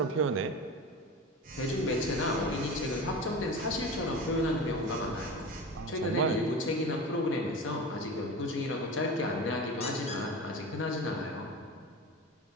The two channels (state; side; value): normal; both; correlation 0.30